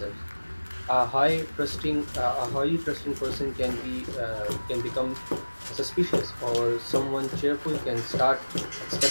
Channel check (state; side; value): inverted; both; correlation -1.00